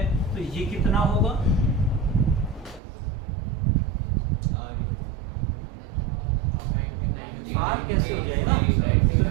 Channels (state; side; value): drops out; left; at 2.8 s